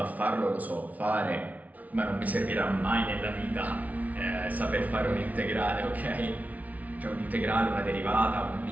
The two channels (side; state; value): left; late; 0.072 ms